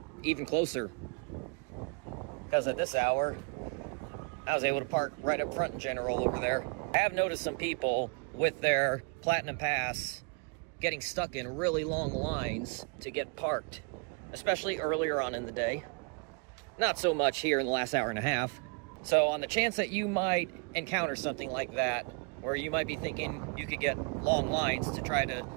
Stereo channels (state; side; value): quieter; left; 34.4 dB